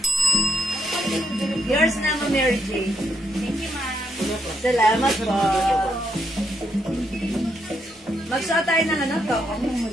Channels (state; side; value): normal; both; correlation 0.77